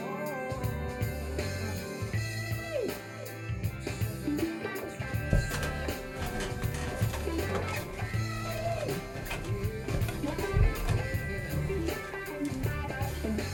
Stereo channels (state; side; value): identical; both; correlation 1.00